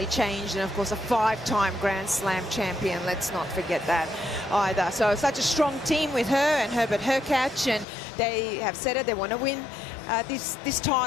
changed, and of course a 5-time Grand Slam champion. Let's not forget that either. So such a strong team with her and Herbert Hurkacz, and they have said it, they want to win this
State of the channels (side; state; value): right; drops out; at 7.9 s